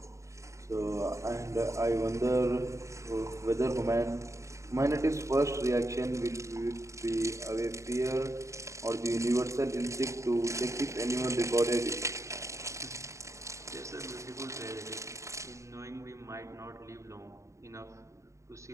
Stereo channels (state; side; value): late; left; 0.14 ms